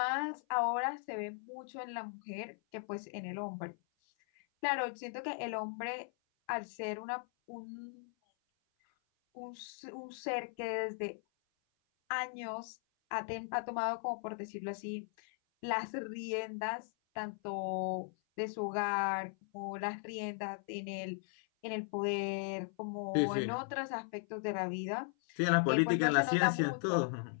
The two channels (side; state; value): right; silent; 53 dB below the other